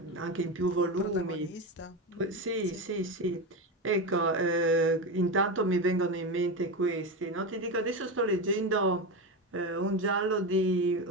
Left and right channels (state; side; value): normal; both; correlation 0.17